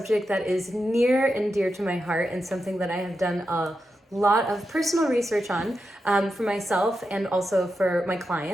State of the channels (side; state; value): both; normal; correlation 0.88